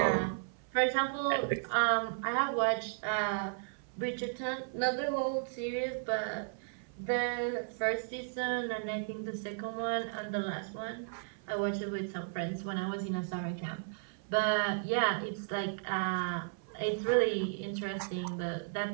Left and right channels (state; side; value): silent; left; 55 dB below the other